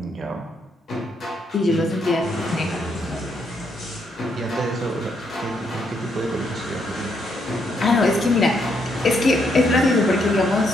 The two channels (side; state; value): both; normal; correlation 0.75